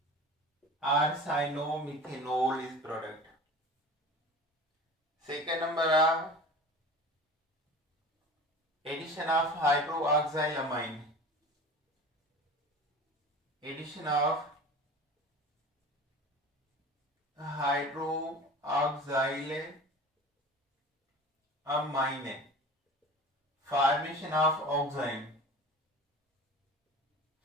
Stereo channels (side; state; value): both; normal; correlation 0.37